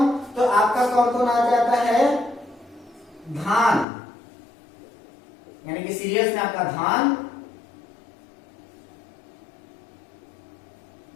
तो आपका कौन कौन आ जाता है, धान यानी कि सीरियल्स में आपका धान,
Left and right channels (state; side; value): drops out; right; at 3.9 s